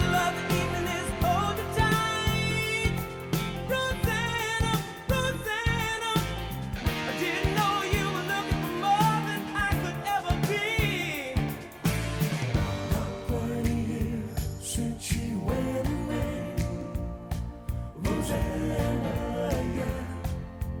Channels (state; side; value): identical; both; correlation 1.00